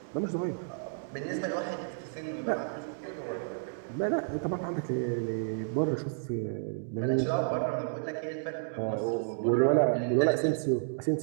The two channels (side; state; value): left; silent; digital silence